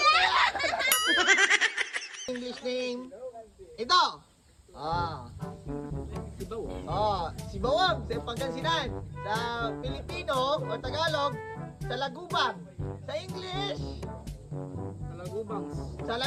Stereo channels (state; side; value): identical; both; correlation 1.00